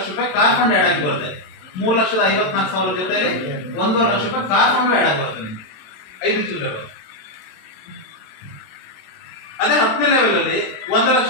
ರೂಪಾಯಿ ಕಾರ್ ಫಂಡ್ ಆಡ್ ಆಗಿ ಬರುತ್ತೆ. 3,54,000 ಜೊತೆಲಿ 1.5 ಲಕ್ಷ ರೂಪಾಯಿ ಕಾರ್ ಫಂಡ್ ಆಡ್ ಆಗಿ ಬರುತ್ತೆ ನಿಮಗೆ 5 ಚಿಲ್ಲರೆ. ಅದೇ 10ನೇ ಲೆವೆಲ್ ಅಲ್ಲಿ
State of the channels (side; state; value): right; late; 27 ms